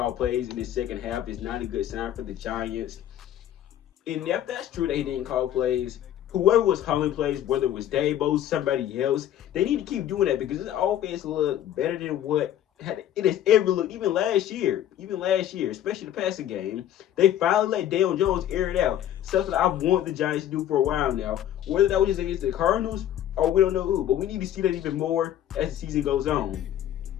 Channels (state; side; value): quieter; right; 11.3 dB